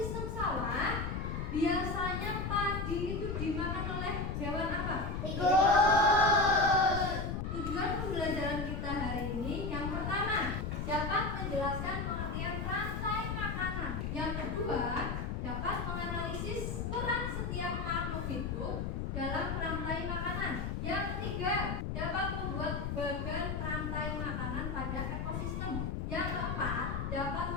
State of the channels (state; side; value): noise; left; rumble, 2 dB below the sound